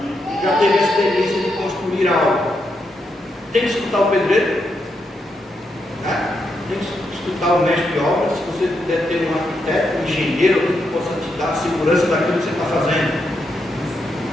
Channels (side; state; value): both; normal; correlation 0.82